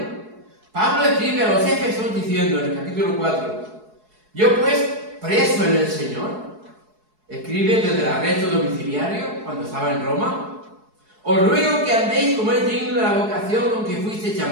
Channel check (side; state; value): left; late; 4.7 ms